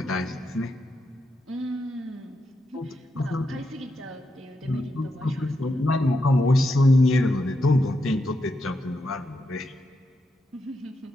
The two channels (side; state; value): both; normal; correlation 0.84